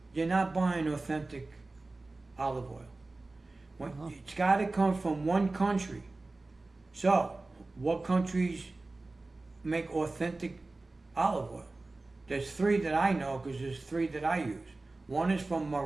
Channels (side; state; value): left; quieter; 3.2 dB